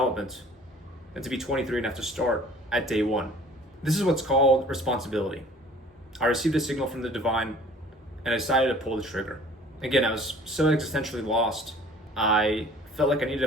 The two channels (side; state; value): both; normal; correlation 0.50